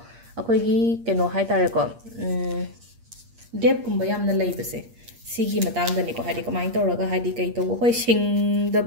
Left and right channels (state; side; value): late; left; 8.5 ms